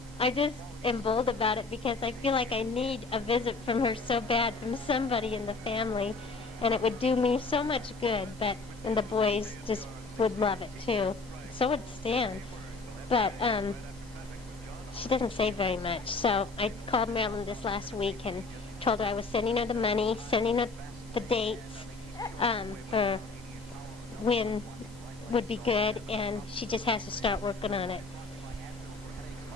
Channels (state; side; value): quieter; right; 3.9 dB